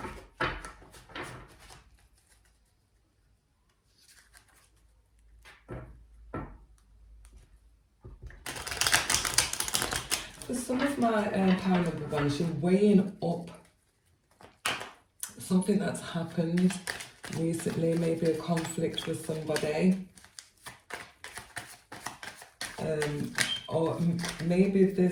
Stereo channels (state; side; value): identical; both; correlation 1.00